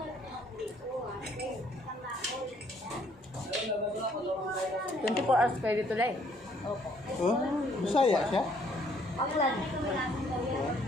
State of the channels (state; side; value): normal; both; correlation 0.65